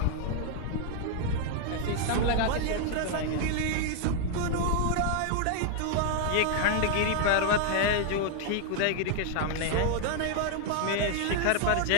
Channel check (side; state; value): both; different; correlation 0.00